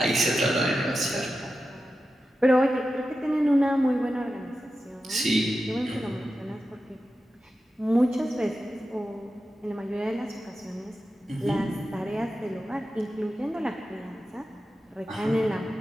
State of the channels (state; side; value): normal; both; correlation 0.91